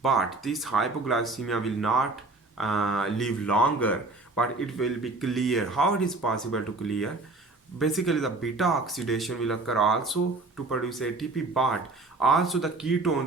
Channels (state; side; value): quieter; left; 3.3 dB